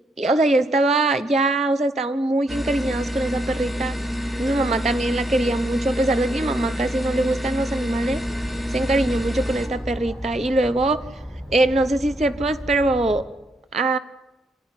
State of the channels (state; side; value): normal; both; correlation 0.77